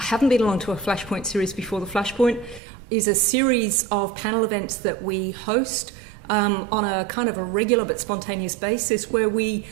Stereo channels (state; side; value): drops out; left; at 2.6 s